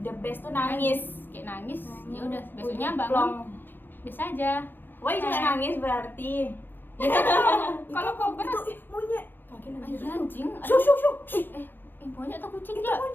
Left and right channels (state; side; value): late; right; 0.096 ms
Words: the best tuh nangis. Kayak nangis, ya udah Udah besoknya plong. bangun biasa aja. Wah, juga nangis berarti. Ya kan kalau kau berat, Itu monyet. Kaki ah, nangis. iya anjing. Shoo, shoo, shoo. Monyet atau kucing Itu ya?